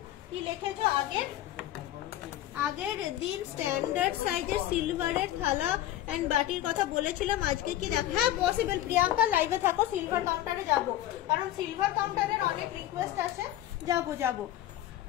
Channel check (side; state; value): right; quieter; 13.7 dB